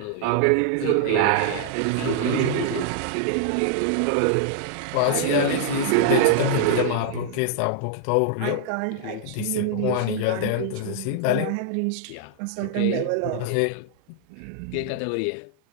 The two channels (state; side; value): different; both; correlation -0.01